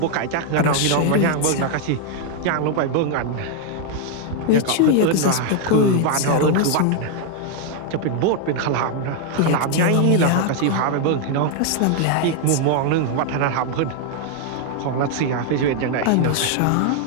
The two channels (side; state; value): both; different; correlation 0.00